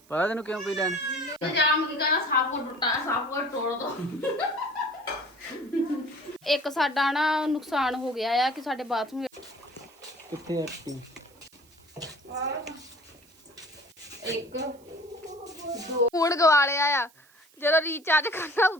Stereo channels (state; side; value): noise; right; hiss, 29 dB below the sound